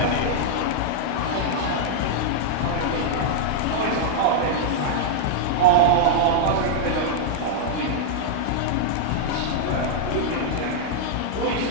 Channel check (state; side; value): different; both; correlation -0.01